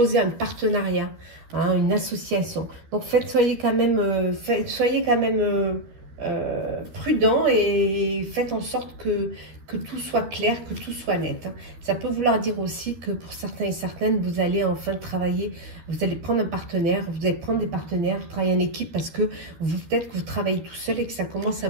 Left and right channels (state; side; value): late; left; 12 ms